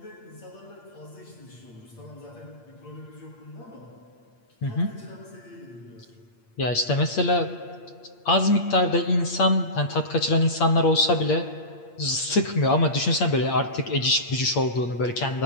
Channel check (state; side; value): late; right; 8.6 ms